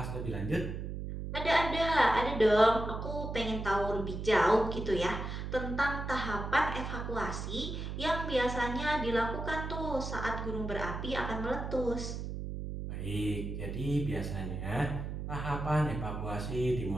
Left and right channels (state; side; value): noise; right; hum, 5 dB below the sound